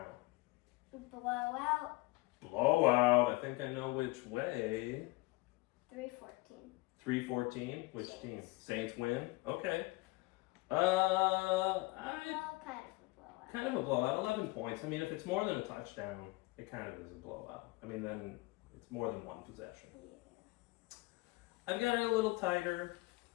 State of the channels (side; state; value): right; quieter; 22.9 dB